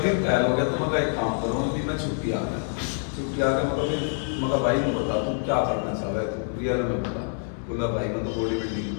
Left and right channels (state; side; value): silent; right; 61 dB below the other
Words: फेल हो गया तो मैं एक काम करो, अभी मैं छुट्टी आ गया। छुट्टी आ गया मगर भाई नहीं बता तुम क्या करना चाह रहे तुम रियल में बता। बोला भाई मैं तो बॉडी बिल्डिंग